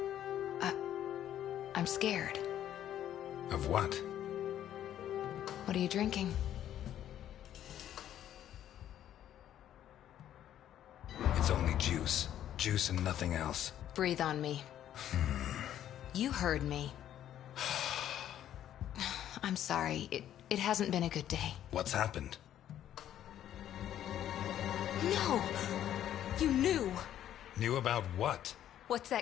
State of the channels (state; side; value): quieter; right; 11.2 dB